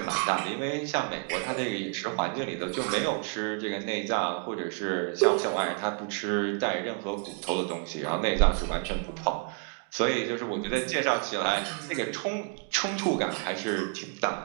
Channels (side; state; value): left; quieter; 37.3 dB